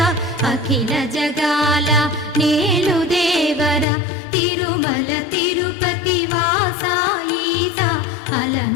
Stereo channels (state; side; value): drops out; right; at 3.9 s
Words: అఖిల జగాల నేలు దేవర తిరుమల తిరుపతి వాస ఈస